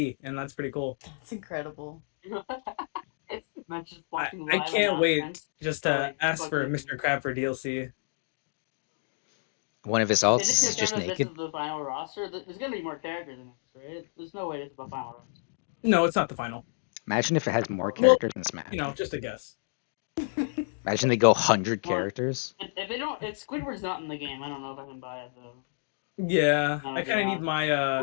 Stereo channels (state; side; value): silent; right; digital silence